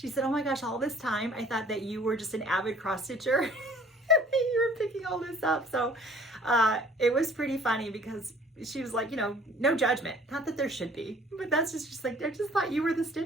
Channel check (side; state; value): both; normal; correlation 0.53